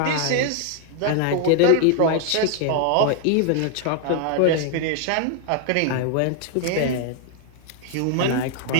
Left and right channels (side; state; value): both; different; correlation 0.00